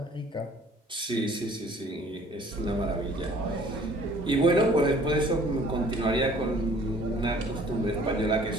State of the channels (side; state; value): both; normal; correlation 0.54